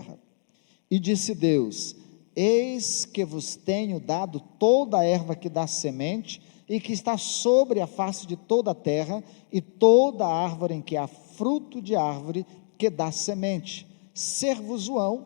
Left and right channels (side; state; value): right; silent; digital silence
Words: E disse Deus: eis que vos tenho dado toda a erva que dá semente, e que está sobre a face de toda a terra, e toda a árvore em que há fruto de árvore que dá semente, ser-vos-ão